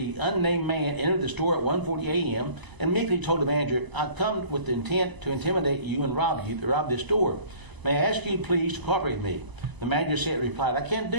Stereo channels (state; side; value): late; left; 1.0 ms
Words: unnamed man entered the store at 1:40 a.m. and meekly told the manager, "I've come with the intent to intimidate you and rob this store. May I ask you please to cooperate with me?" The manager replied, "I can't